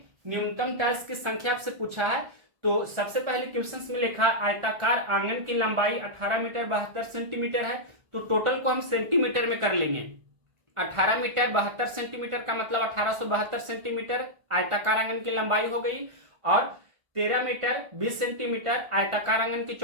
न्यूनतम टाइल्स की संख्या आपसे पूछा है। तो सबसे पहले क्वेश्चंस में लिखा आयताकार आंगन की लंबाई 18 मीटर 72 सेंटीमीटर है। तो टोटल को हम सेंटीमीटर में कर लेंगे। 18 मीटर 72 सेंटीमीटर का मतलब 1872 सेंटीमीटर आयताकार आंगन की लंबाई हो गई। और 13 मीटर 20 सेंटीमीटर आयताकार आंगन की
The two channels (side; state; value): left; late; 1.4 ms